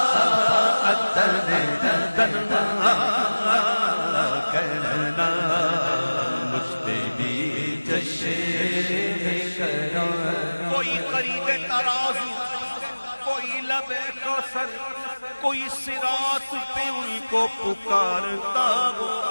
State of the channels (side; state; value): both; inverted; correlation -1.00